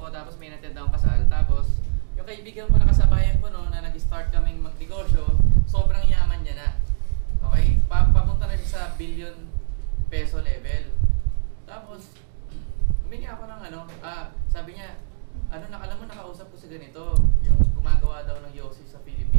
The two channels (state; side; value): silent; left; digital silence